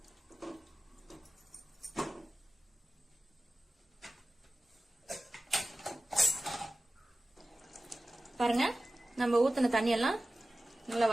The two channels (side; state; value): both; normal; correlation 0.95